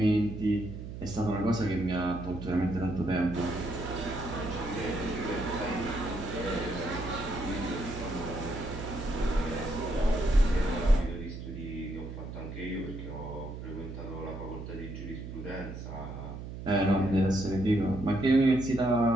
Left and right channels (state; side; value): noise; right; hum, 9 dB below the sound